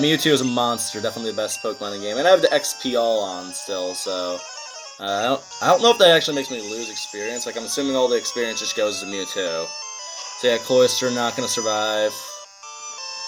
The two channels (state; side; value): identical; both; correlation 1.00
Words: is a monster. Definitely the best Pokemon in the game. And I have the XP all on still, so... I don't know if that actually makes me lose experience. Like, I'm assuming all the experience just goes to Mewtwo. So yeah, Cloyster not gonna survive.